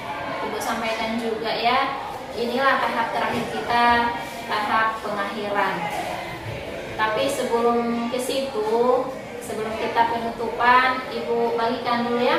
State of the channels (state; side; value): identical; both; correlation 1.00